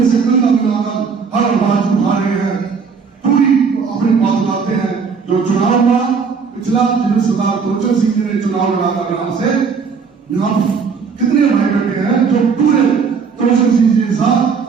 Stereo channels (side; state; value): left; quieter; 5.6 dB